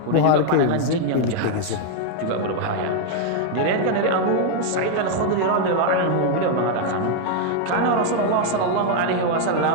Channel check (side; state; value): both; different; correlation 0.00